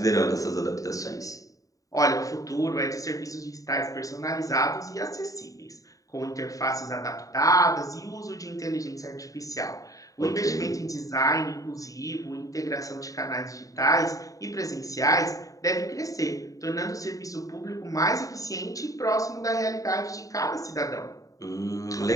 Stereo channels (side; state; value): right; late; 0.16 ms